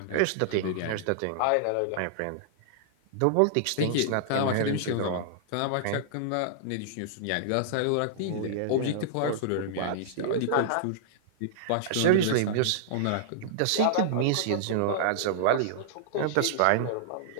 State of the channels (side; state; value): both; different; correlation -0.02